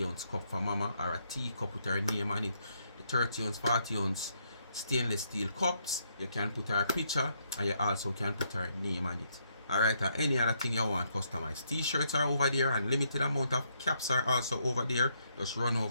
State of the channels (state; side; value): inverted; both; correlation -0.75